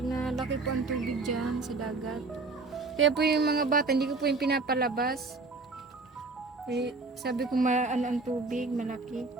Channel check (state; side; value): quieter; left; 3.7 dB